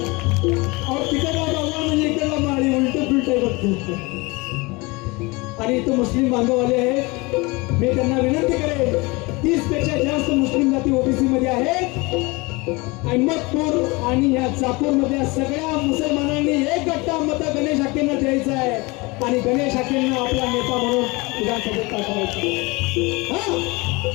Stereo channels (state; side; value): quieter; right; 25.0 dB